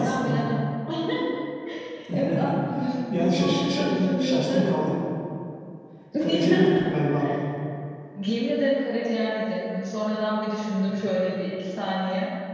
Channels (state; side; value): identical; both; correlation 1.00